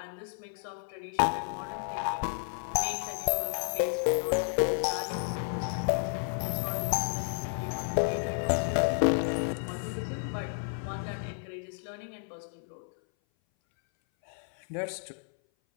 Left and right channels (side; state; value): right; silent; 57 dB below the other